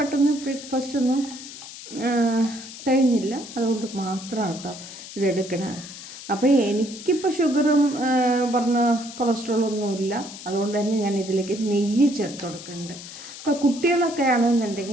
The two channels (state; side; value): noise; left; hiss, 13 dB below the sound